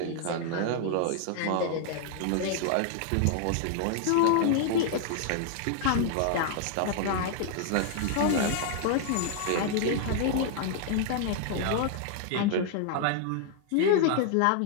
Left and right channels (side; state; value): both; different; correlation 0.00